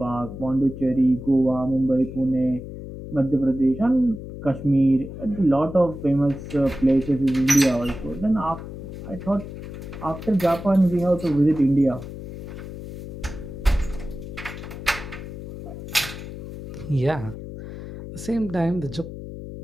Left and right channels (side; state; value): left; noise; hum, 10 dB below the sound